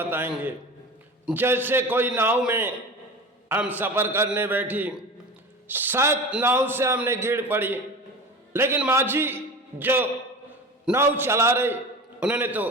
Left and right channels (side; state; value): both; normal; correlation 0.32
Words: जैसे कोई नाव में हम सफ़र करने बैठी, शायद नाव से हमने गिर पड़ी, लेकिन माझी जो नाव चला रहे उन्होंने तो